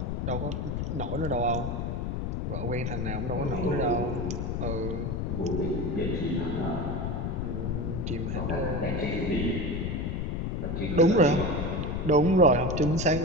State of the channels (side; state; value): left; noise; rumble, 1 dB below the sound